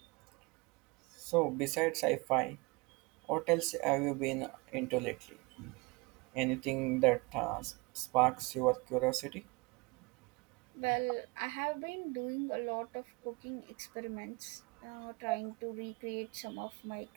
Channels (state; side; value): quieter; left; 26.7 dB